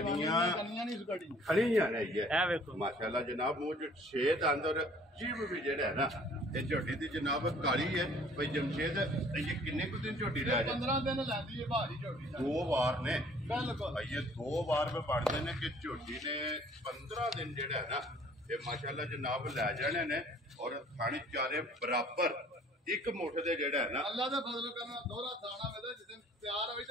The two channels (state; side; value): normal; both; correlation 0.55